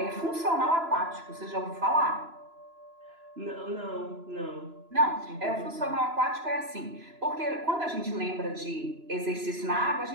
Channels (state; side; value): late; left; 3.0 ms